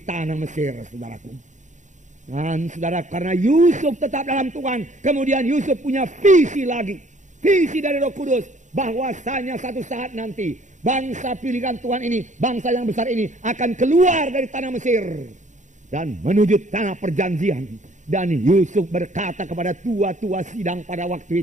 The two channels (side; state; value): left; late; 0.35 ms